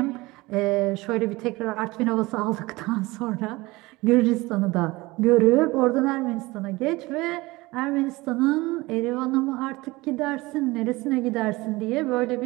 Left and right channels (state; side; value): quieter; left; 21.5 dB